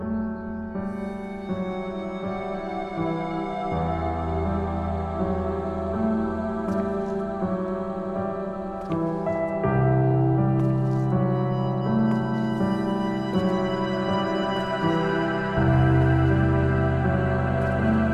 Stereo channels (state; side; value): identical; both; correlation 1.00